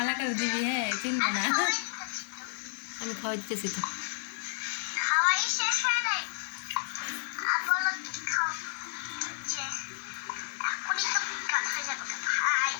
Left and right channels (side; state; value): right; silent; digital silence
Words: দিবি হ্যাঁ চিনবো না আমি খাওয়া দিতেছি তো